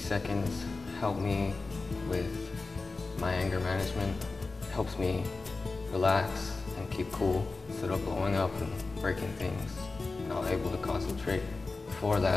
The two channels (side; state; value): right; quieter; 3.8 dB